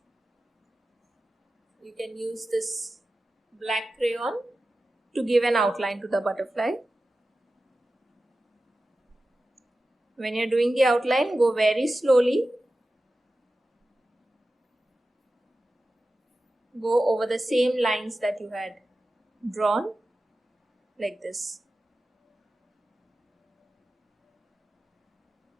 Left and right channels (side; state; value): both; normal; correlation 0.94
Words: You can use this black crayon to give an outline to the butterfly. When you're doing the outline, go very slowly. Go over the same lines that you had drawn, like this.